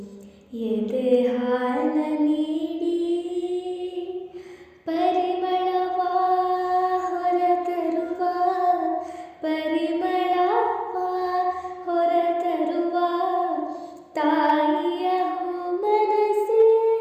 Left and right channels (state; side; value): identical; both; correlation 1.00